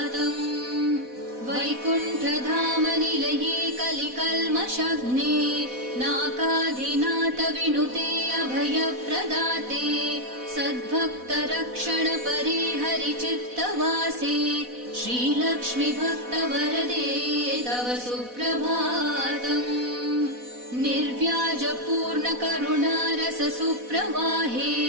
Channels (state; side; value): late; left; 4.1 ms